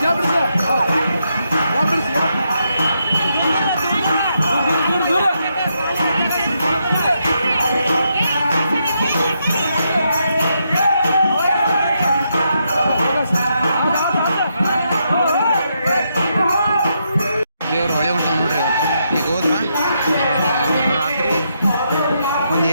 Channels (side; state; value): both; inverted; correlation -0.80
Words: ದೇವ್ರು ಹೊಳೆ ಹೊಂಟ ನೋಡ್ರಿ ಇವತ್ತು ಈಗ ಹೋದ್ರ ರಾತ್ರಿ ಒಂದು